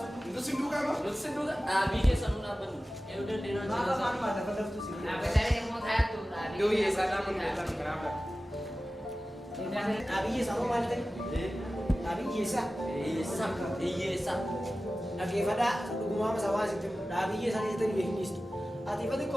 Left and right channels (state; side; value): normal; both; correlation 0.96